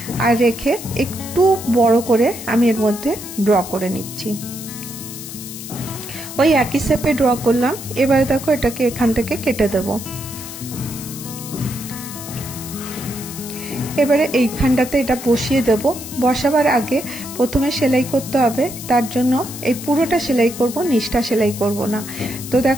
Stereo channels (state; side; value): noise; left; hiss, 11 dB below the sound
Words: আর রেখে একটু বড় করে আমি এর মধ্যে ড্র করে নিচ্ছি। ওই একই শেপে ড্র করলাম। এবারে দেখো এটাকে এখান থেকে কেটে দেবো। এবারে এইখানটাতে এটা বসিয়ে দেব। বসাবার আগে প্রথমে সেলাই করতে হবে, তার জন্য এই পুরোটা সেলাই করব, নিচটা সেলাই করব না। তো